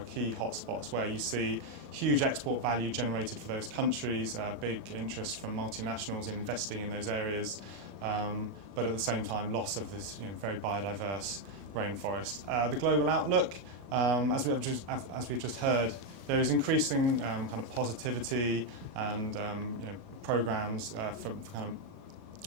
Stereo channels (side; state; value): left; late; 37 ms